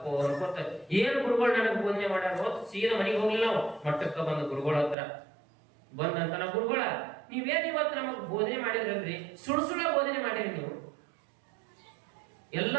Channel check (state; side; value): drops out; left; at 5.0 s